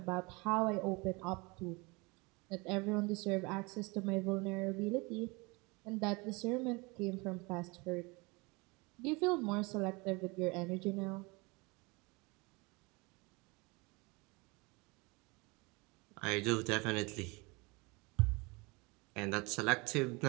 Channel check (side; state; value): left; quieter; 26.9 dB